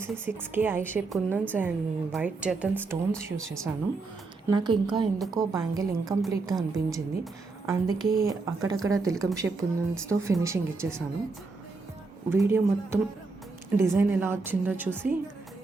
6K eye shape kundans and white జర్దన్ స్టోన్స్ యూస్ చేశాను. నాకు ఇంకా ఎందుకో బ్యాంగిల్ ఇన్కంప్లీట్గా అనిపించింది, అందుకే అక్కడక్కడ తిలకం షేప్ కుందన్స్తో ఫినిషింగ్ ఇచ్చేసాను. వీడియో మొత్తం డిజైన్ ఎలా వచ్చిందో చూసి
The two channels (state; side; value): quieter; left; 3.9 dB